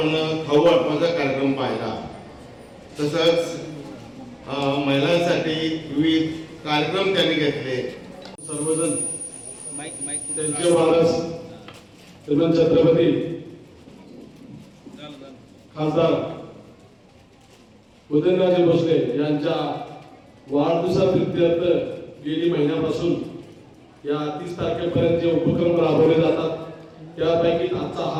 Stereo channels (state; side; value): identical; both; correlation 1.00